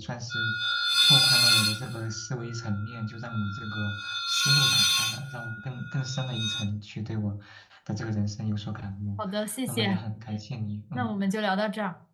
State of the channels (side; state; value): both; identical; correlation 1.00